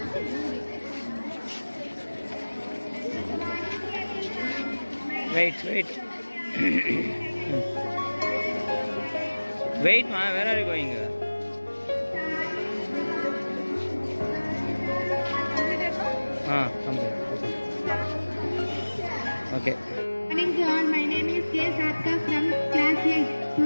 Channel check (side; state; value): both; inverted; correlation -1.00